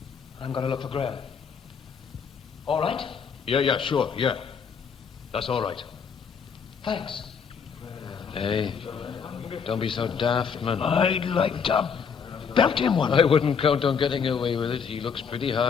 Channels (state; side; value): quieter; right; 6.4 dB